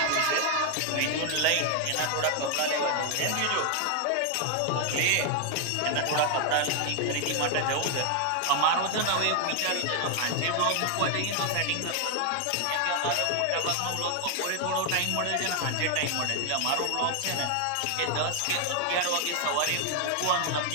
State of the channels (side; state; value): both; different; correlation 0.00